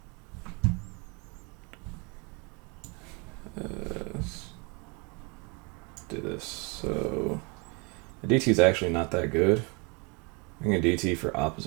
Do this. So the DT is actually not that good. I can DT for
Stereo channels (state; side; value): quieter; left; 29.7 dB